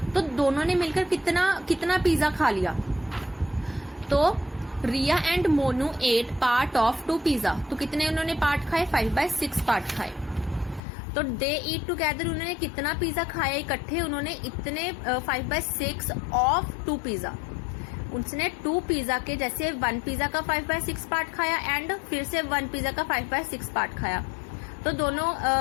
तो दोनों ने मिलकर कितना पिज्जा खा लिया। तो Riya and Monu ate part of 2 pizza, तो कितने उन्होंने पार्ट खाए, 5/6 पार्ट खाए। तो दे ईट टुगेदर, उन्होंने कितना पिज्जा खाया इकट्ठे, उन्होंने इतने 5/6 ऑफ 2 पिज्जा। उसने 2 पिज्जा के, जैसे 1 पिज्जा का 5/6 पार्ट खाया एंड फिर से 1 पिज्जा का 5/6 पार्ट खाया। तो दोनों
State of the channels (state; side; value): drops out; right; at 10.8 s